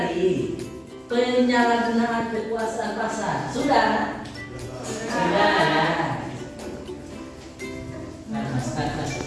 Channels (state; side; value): identical; both; correlation 1.00